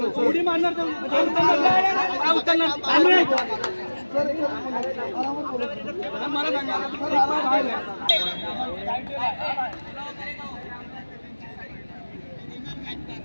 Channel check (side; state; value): both; inverted; correlation -1.00